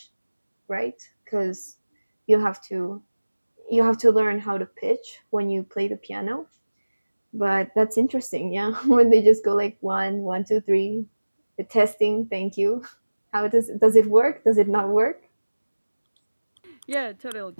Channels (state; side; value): inverted; both; correlation -1.00